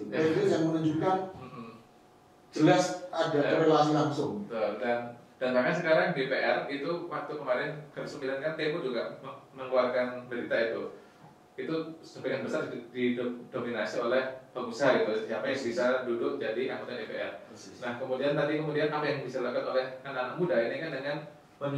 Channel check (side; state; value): both; identical; correlation 1.00